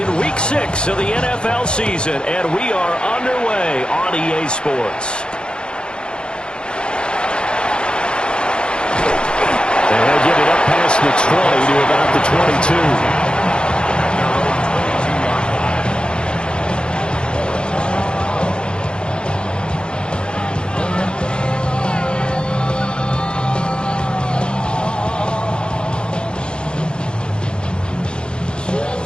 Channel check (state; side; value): late; right; 0.052 ms